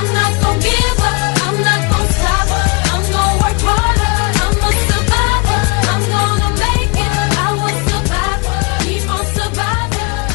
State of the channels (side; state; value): right; quieter; 30.8 dB